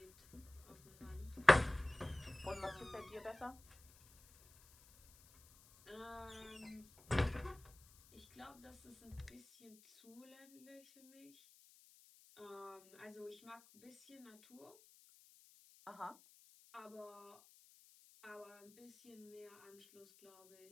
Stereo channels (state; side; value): noise; left; hiss, 24 dB below the sound